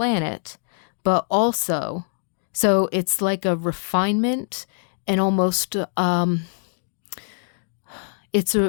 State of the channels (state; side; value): silent; right; 63 dB below the other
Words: but also, so it's like a refinement and almost, it's